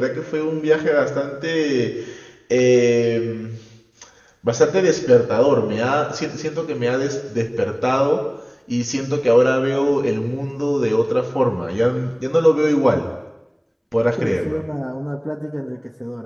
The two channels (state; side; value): identical; both; correlation 1.00